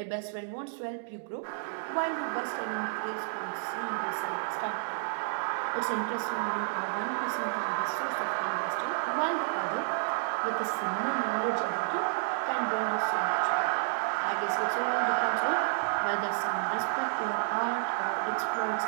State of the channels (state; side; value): silent; left; digital silence